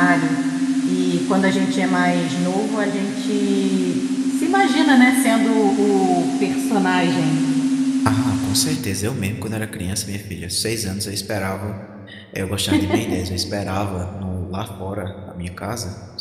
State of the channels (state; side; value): identical; both; correlation 1.00